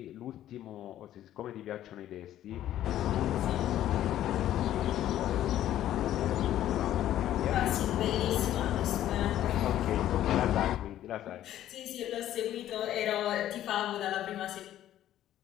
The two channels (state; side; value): quieter; right; 12.4 dB